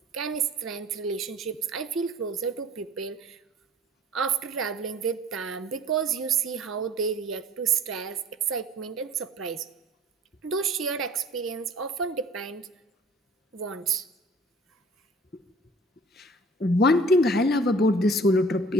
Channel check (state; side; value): normal; both; correlation 0.49